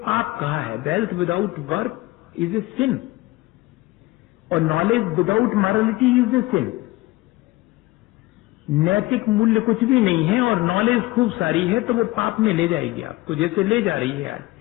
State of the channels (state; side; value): quieter; right; 19.2 dB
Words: कहा है। Wealth without work is a sin, और knowledge without morality is a sin. नैतिक मूल्य कुछ भी नहीं है और नॉलेज खूब सारी है तो वो पाप में ले जाएगी आपको, जैसे ले जा रही है आज।